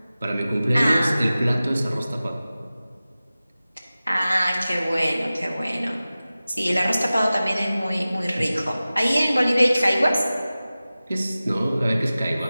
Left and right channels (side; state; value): both; inverted; correlation -0.96